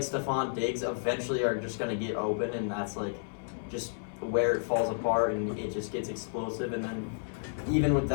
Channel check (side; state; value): right; silent; 57 dB below the other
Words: Stephon Diggs eventually are just gonna get open, and that's just where it falls apart and it just gets explosive. And then even with